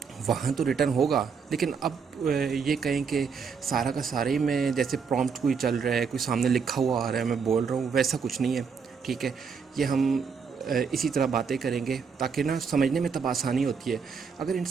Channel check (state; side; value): quieter; left; 5.9 dB